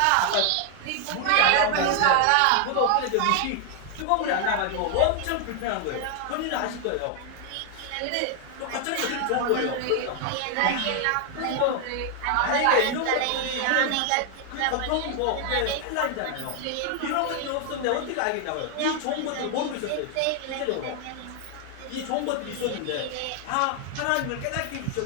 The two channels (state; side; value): different; both; correlation 0.00